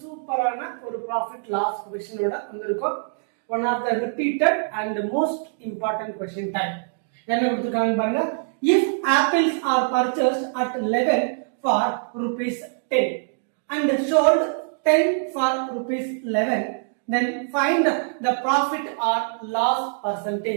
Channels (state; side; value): silent; left; digital silence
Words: சூப்பரான ஒரு ப்ராஃபிட் லாஸ் கொஸ்டினோட வந்திருக்கோம். One of the repeated and most important question type. என்ன கொடுத்துருக்காங்க பாருங்க. If apples are purchased at 11 for rupees 10 and sold 10 for rupees 11, then find the profit or loss